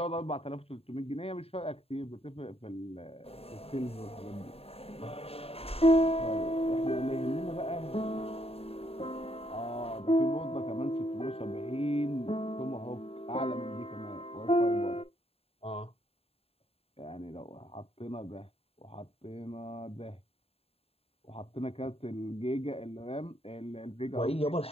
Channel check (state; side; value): late; right; 0.29 ms